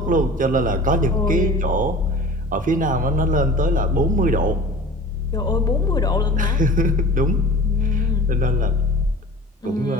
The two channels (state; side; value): normal; both; correlation 0.40